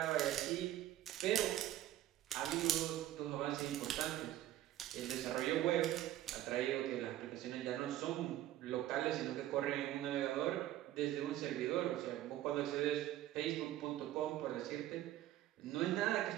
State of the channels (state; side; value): quieter; left; 13.5 dB